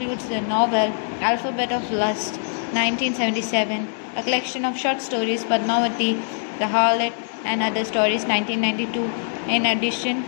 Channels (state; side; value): silent; right; 64 dB below the other